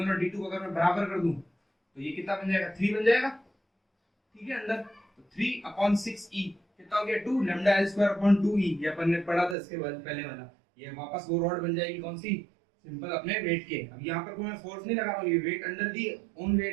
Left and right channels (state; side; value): drops out; left; at 9.6 s